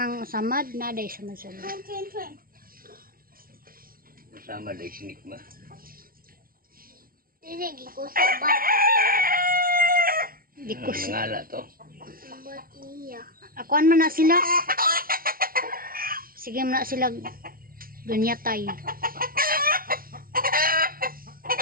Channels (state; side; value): late; left; 0.43 ms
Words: samad, naday samad. Train. Sama dahil sinik ma. Sige ko sa bata. Di ko Nangala to. Ba't niya? akuan man na sila. Sige man na sila gunyatay.